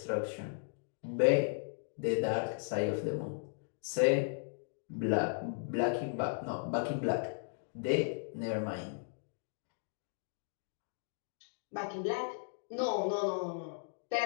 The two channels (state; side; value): silent; right; digital silence